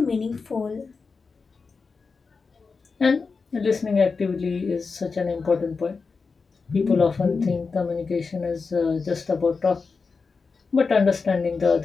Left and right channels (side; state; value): right; quieter; 4.7 dB